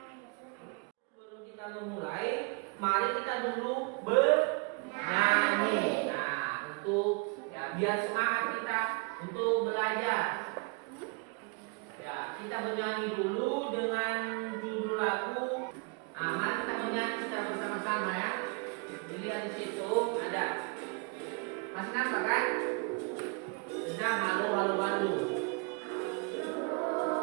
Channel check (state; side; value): quieter; left; 32.4 dB